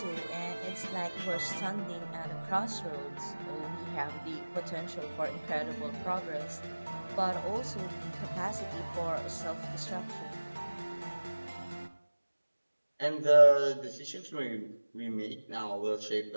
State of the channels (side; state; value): both; inverted; correlation -1.00